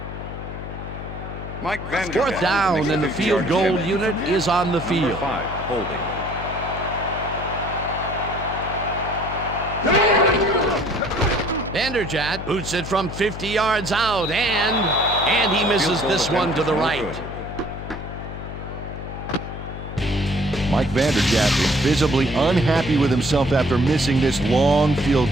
Mike Vanderjagt Fourth down, makes and the 50 field yard goal catch. unit is on the Number field. 5, holding. Vanderjagt boots it from 50 yards out, and he misses this one to the right. Mike Vanderjagt is visibly unhappy with himself after missing this long field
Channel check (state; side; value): noise; left; hum, 9 dB below the sound